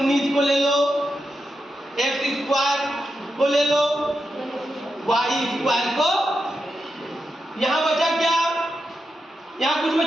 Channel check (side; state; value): both; normal; correlation 0.87